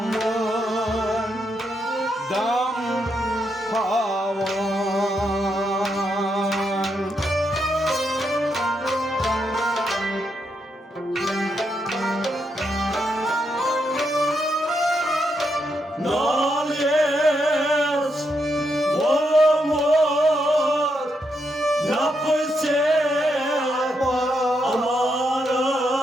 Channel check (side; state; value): both; normal; correlation 0.81